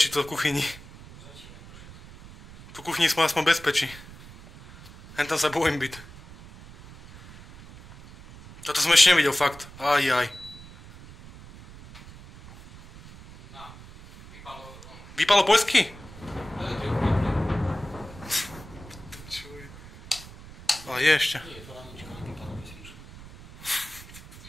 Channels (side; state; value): right; noise; rumble, 18 dB below the sound